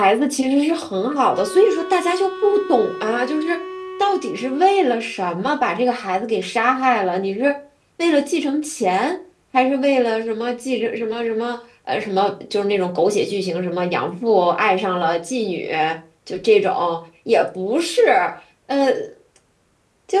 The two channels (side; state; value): both; identical; correlation 1.00